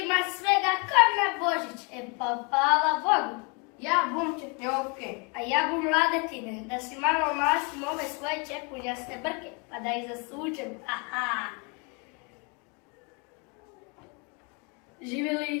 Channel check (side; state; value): right; quieter; 33.1 dB